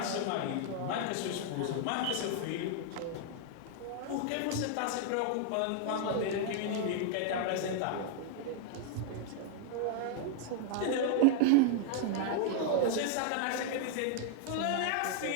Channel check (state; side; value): different; both; correlation 0.00